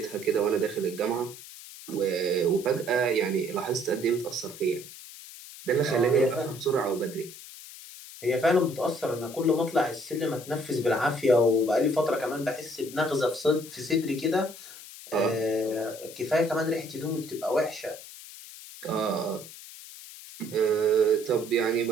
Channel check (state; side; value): noise; left; hiss, 15 dB below the sound